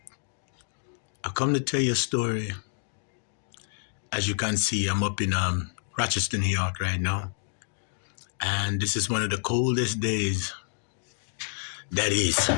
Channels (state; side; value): silent; right; 59 dB below the other